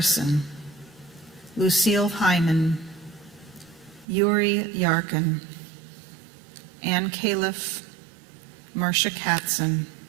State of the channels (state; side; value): drops out; left; at 4.0 s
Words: Lucille Hyman, Yuri Yarkin, Ann Califf, Marcia Katzen,